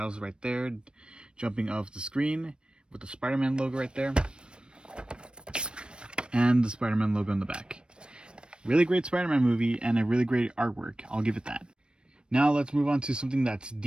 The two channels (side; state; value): left; late; 0.054 ms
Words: right there, jumping off the screen with the Spider-Man logo right there, and the Spider-Man logo in the back. Really great Spider-Man movie and a really great artwork. I'll give it that. Now let's move on to something that's